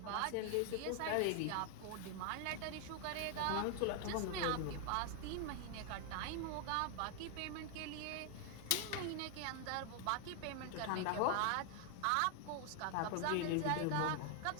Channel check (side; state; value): both; different; correlation 0.00